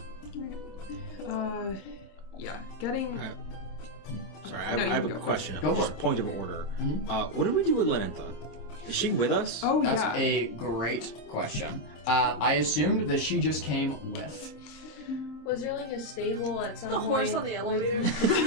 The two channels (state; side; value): late; right; 26 ms